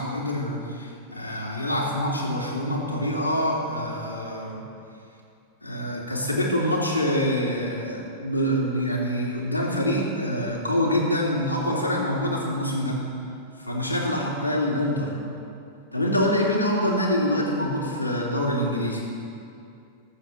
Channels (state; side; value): inverted; both; correlation -0.37